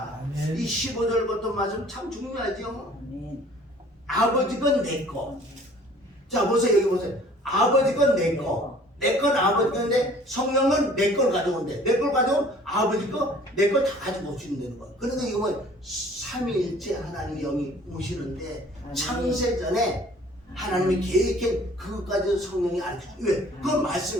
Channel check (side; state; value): both; normal; correlation 0.52